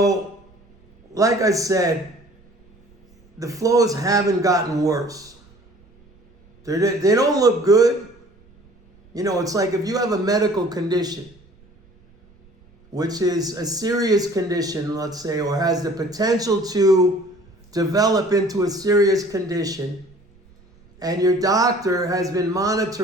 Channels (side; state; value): right; noise; rumble, 29 dB below the sound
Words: like I said, the flows haven't gotten worse. They don't look good. It's like if you have a medical condition, which is a serious condition, let's say, or has the potential to develop into a serious condition, and your doctor has been